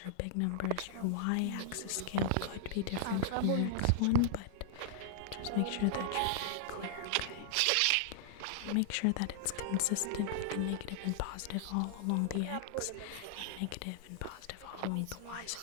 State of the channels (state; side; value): different; both; correlation -0.01